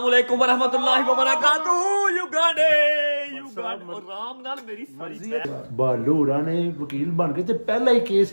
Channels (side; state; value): both; inverted; correlation -1.00